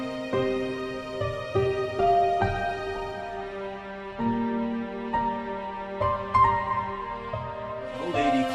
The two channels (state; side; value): identical; both; correlation 1.00